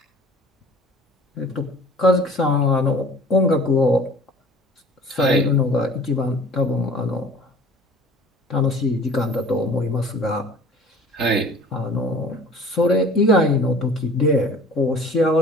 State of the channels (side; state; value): both; normal; correlation 0.46